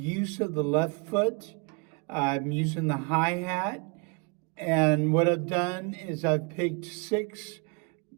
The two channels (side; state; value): left; quieter; 33.1 dB